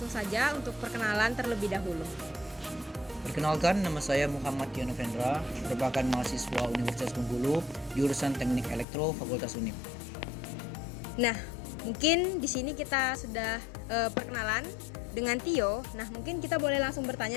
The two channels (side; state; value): right; drops out; at 8.8 s